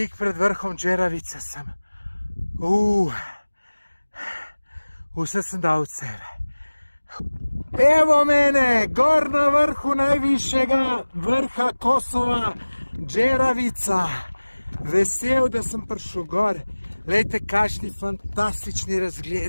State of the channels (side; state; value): both; inverted; correlation -1.00